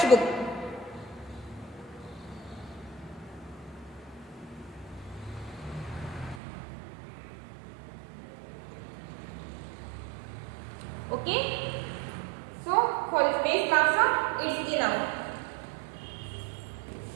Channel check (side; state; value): left; drops out; at 6.4 s